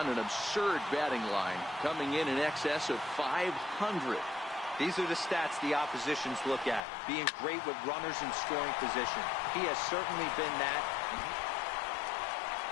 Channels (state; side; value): drops out; right; at 6.8 s